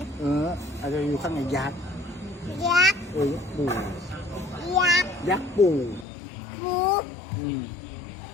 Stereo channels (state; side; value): drops out; right; at 6.1 s